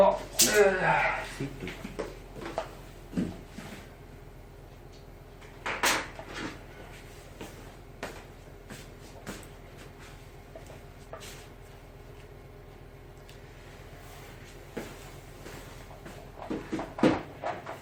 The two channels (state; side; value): identical; both; correlation 1.00